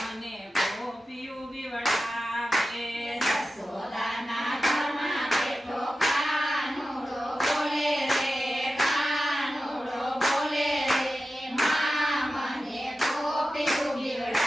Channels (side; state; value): both; normal; correlation 0.94